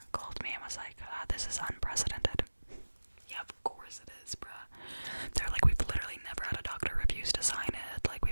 called me and was like, this is unprecedented. Yeah, of course it is, bruh. They're like, we've literally never had a doctor refuse to sign it. Like,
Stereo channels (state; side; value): inverted; both; correlation -1.00